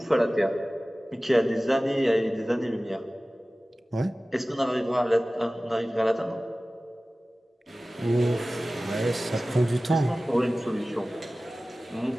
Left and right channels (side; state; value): both; normal; correlation 0.97